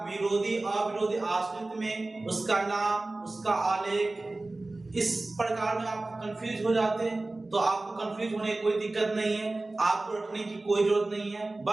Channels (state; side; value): quieter; left; 3.0 dB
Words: विरोधी अविरोधी आश्रित में उसका नाम, उसका आलेख इस प्रकार में आप कंफ्यूज हो जाते हैं? तो आपको कंफ्यूज होने की कोई दिक्कत नहीं है, आपको रखने की कोई जरूरत नहीं है।